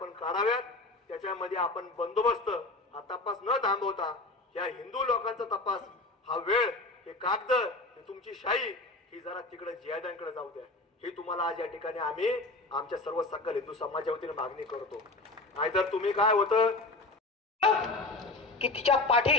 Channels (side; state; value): right; quieter; 3.1 dB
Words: काढाव्यात. त्याच्यामध्ये आपण बंदोबस्त हा तपास न थांबवता या हिंदू लोकांचा तपास हा वेळ हे कागद ही तुमची शाही ही जरा तिकडे जिहाद्यांकडे जाऊ द्या. ही तुम्हाला आज या ठिकाणी आम्ही आमच्या सर्व सकल हिंदू समाजाच्या वतीने मागणी करतो. नाहीतर तुम्ही काय होतं की तिच्या